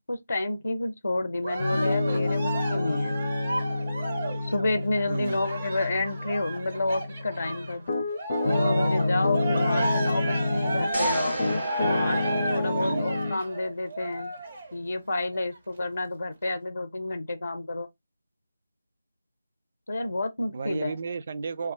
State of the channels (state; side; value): inverted; both; correlation -0.89